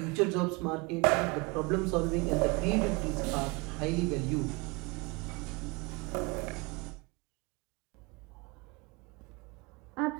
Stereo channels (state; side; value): quieter; left; 27.0 dB